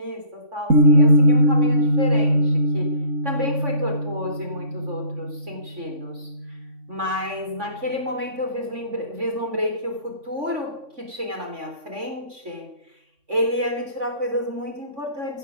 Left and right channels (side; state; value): left; late; 3.5 ms